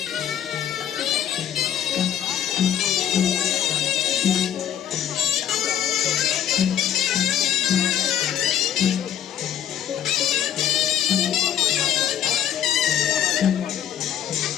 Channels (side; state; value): right; quieter; 10.2 dB